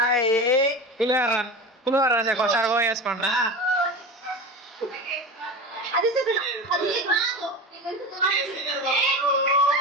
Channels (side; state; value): both; normal; correlation 0.27